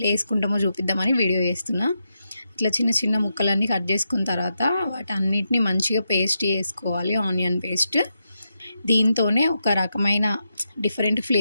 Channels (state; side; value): inverted; both; correlation -0.85